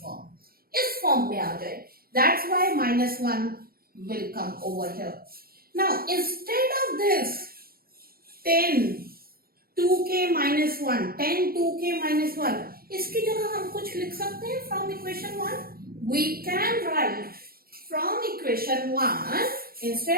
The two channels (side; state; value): left; late; 0.44 ms